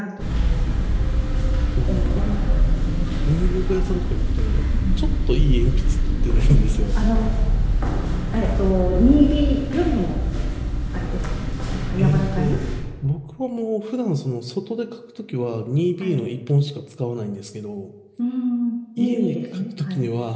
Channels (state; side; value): identical; both; correlation 1.00